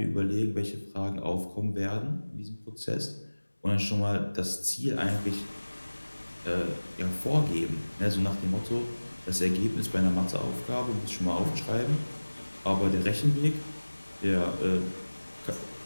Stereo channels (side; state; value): both; inverted; correlation -1.00